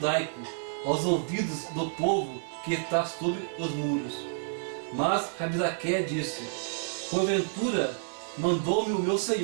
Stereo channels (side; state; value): left; silent; digital silence